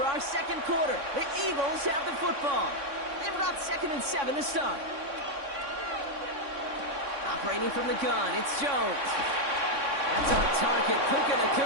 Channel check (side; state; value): left; late; 3.6 ms